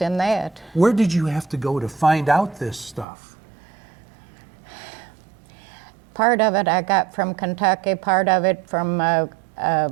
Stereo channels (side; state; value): left; drops out; at 3.1 s